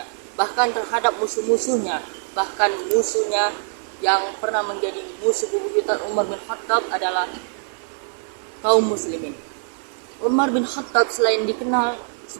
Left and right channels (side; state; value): left; silent; digital silence